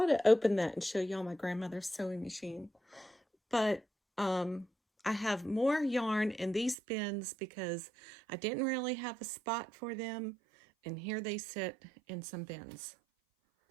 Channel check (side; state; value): left; drops out; at 6.8 s